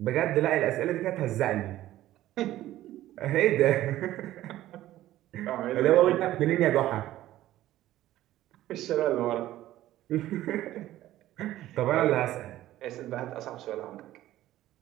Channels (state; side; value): quieter; left; 14.4 dB